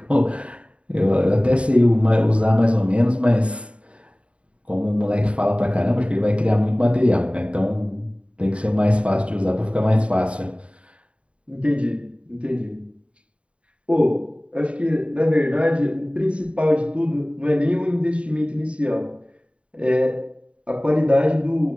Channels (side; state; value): left; late; 0.060 ms